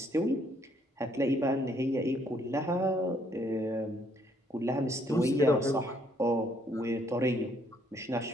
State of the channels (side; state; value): both; normal; correlation 0.68